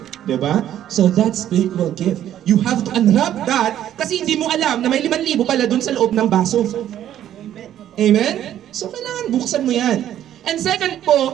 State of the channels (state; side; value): quieter; left; 11.4 dB